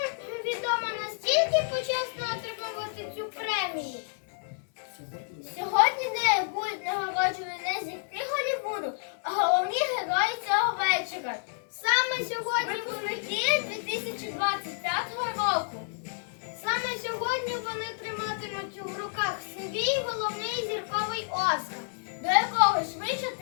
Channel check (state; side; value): silent; right; digital silence